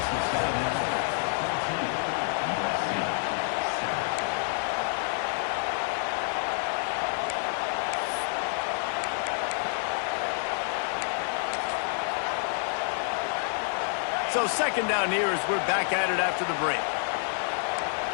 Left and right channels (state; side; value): silent; right; 56 dB below the other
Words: So 2nd down here as we're back at it after the break.